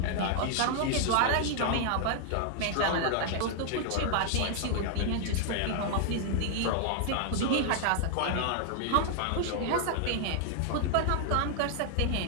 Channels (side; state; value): both; different; correlation 0.00